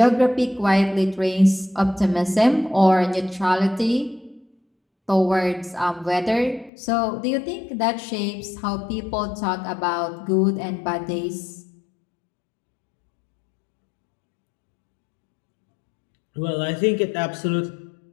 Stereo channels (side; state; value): right; drops out; at 6.7 s